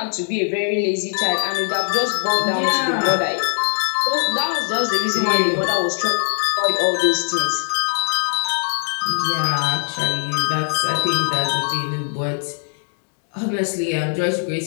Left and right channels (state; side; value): silent; right; digital silence